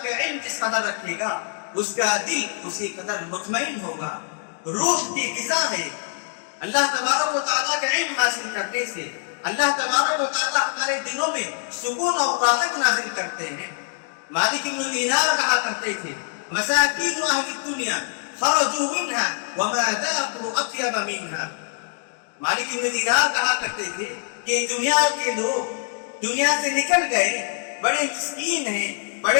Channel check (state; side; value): silent; right; 63 dB below the other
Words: کا علم جس قدر رکھے گا، اس کا دل اسی قدر مطمئن ہوگا، روح کی غذا ہے۔ اللہ تبارک و تعالیٰ کا علم حاصل کرنے سے اللہ تبارک و تعالیٰ ہمارے دلوں میں سکون اور راحت نازل کرتے ہیں۔ مالک بن دینار کہا کرتے تھے، مساکین اہل الدنیا خرجوا منها وما ذاقوا اطیب منها۔ مالک بن دینار کہا کرتے تھے کہ دنیا کے لوگ دنیا سے نکل گئے، بڑے مسکین ہیں،